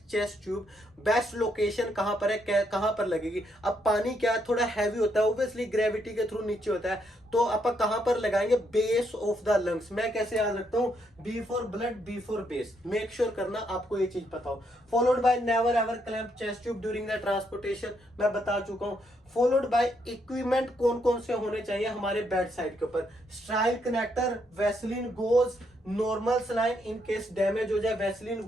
chest tube, best location कहां पर है, कहां पर लगेगी? अब पानी क्या थोड़ा हैवी होता है, ऑब्वियसली ग्रेविटी के थ्रू नीचे होता है, तो आप कहां पर लगाएंगे? Base of the lungs. मैं कैसे याद रखता हूं? B for blood, B for base. Make sure करना आपको ये चीज पता हो। Followed by never ever clamp chest tube during the transportation, मैं बता चुका हूं। फॉलोड बाय इक्विपमेंट कौन कौन से होने चाहिए हमारे बेड साइड के ऊपर? स्ट्राइल connector, Vaseline goes, normal saline in case damage हो जाए, वैसलीन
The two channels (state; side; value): normal; both; correlation 0.75